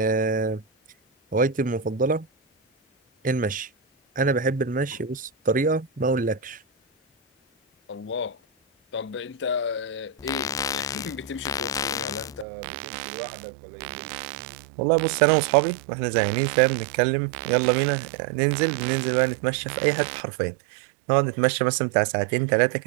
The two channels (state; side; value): drops out; left; at 12.5 s